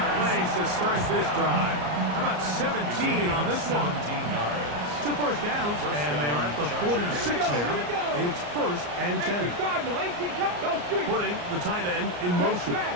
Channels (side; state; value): left; late; 34 ms